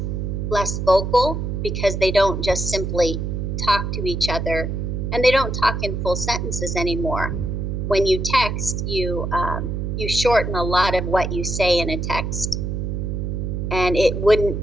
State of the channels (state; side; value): noise; right; hum, 3 dB below the sound